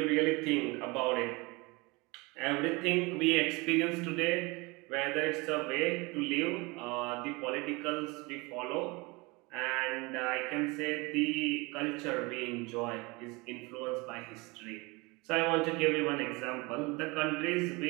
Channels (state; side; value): quieter; left; 25.5 dB